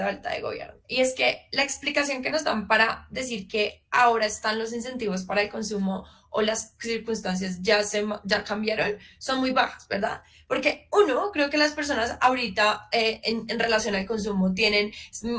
de Alta de Gobierno, y es que la explicación que nos dan para decir que ahora están los incentivos para el consumo o las circunstancias ya cambiaron son muy bajas, ¿verdad? Porque uno, creo que las personas ahorita en relación al consumo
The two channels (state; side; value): identical; both; correlation 1.00